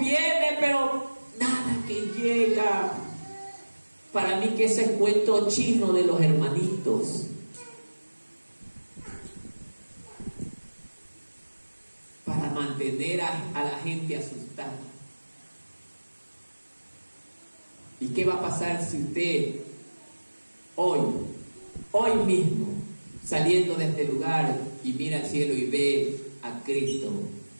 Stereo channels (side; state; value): both; inverted; correlation -1.00